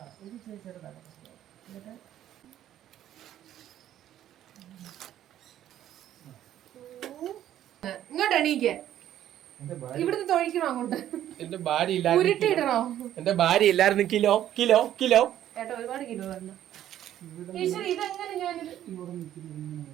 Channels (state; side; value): quieter; left; 11.8 dB